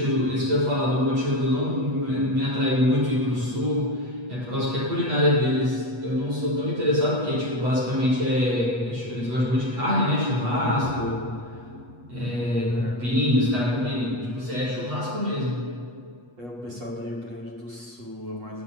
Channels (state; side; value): late; left; 8.2 ms